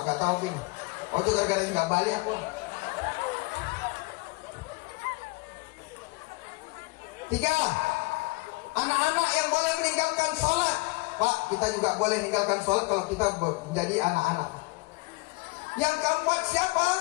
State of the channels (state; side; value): quieter; right; 24.2 dB